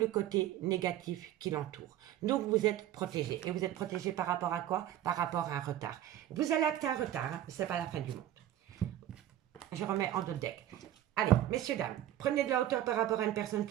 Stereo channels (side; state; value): left; quieter; 12.3 dB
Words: côté négatif qui l'entoure. Donc vous êtes protégé. Et vous êtes protégé par rapport à quoi? Par rapport à un retard. Vous allez acter un retard, hein? Ce n'est pas la fin du monde. Je remets en d'autres deck. Allez, messieurs, dames, prenez de la hauteur par rapport à une personne